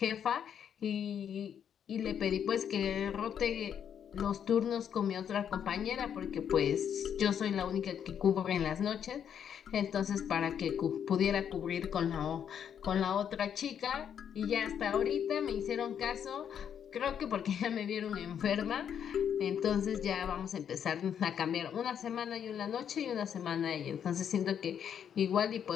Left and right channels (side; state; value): right; quieter; 8.5 dB